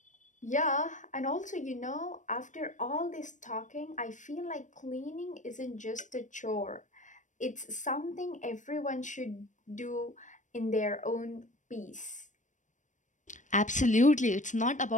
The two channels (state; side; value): late; right; 0.36 ms